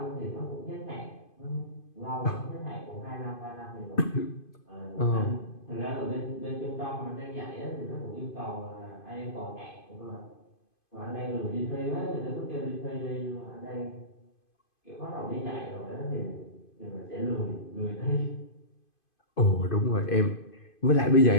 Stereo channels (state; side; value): late; right; 2.5 ms